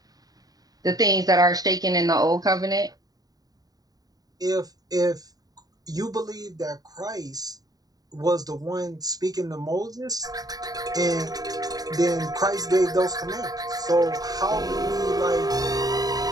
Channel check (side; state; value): left; late; 0.18 ms